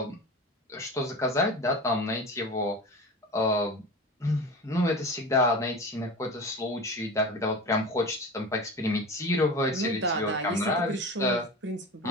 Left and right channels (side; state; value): both; normal; correlation 0.31